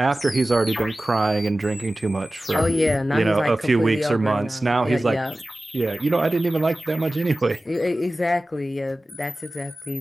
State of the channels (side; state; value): both; normal; correlation 0.96